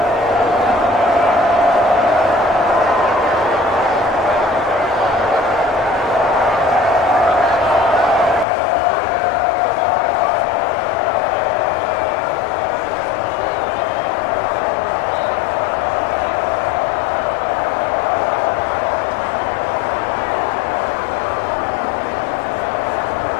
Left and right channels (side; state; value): right; drops out; at 8.5 s